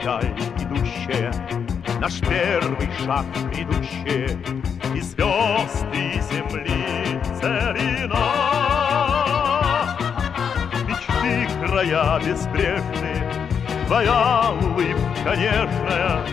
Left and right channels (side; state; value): right; quieter; 7.1 dB